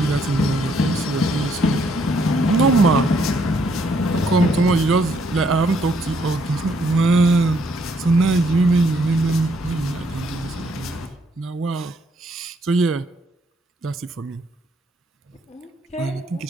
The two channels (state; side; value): normal; both; correlation 0.70